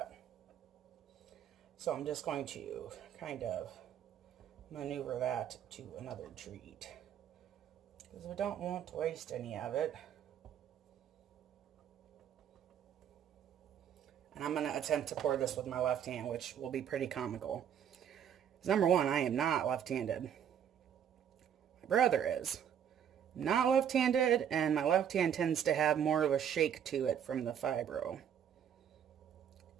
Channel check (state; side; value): quieter; left; 9.0 dB